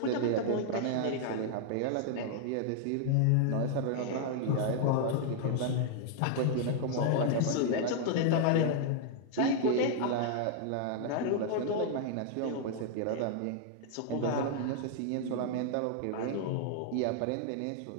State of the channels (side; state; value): both; different; correlation -0.01